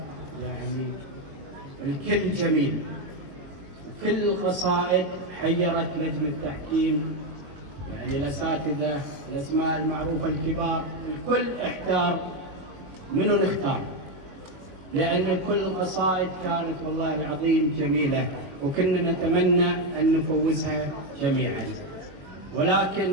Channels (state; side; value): late; left; 21 ms